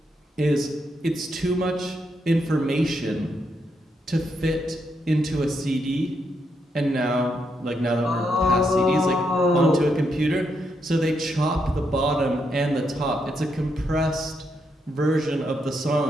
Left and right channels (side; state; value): both; normal; correlation 0.80